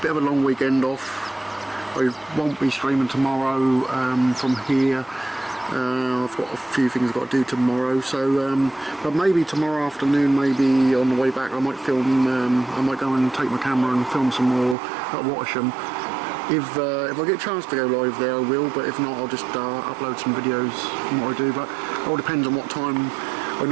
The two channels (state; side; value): drops out; left; at 14.8 s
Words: a long weekend off. I won't be streaming tomorrow from here. I've got a few things I've got to do tomorrow, so but maybe tomorrow afternoon, maybe on the way back I might film, I might go and take my camera and film some more at Watersham. If I get a chance to go live there I will, but if not I'll just upload some videos from what I do, but it all depends on what time. I